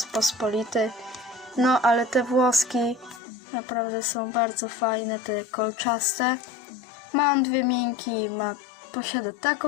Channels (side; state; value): right; drops out; at 3.2 s